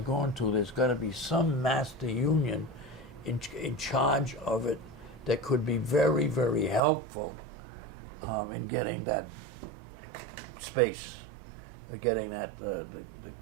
into, there's got to be some master union in charge of it that could be very, very helpful in getting that space, getting that the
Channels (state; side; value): drops out; left; at 6.8 s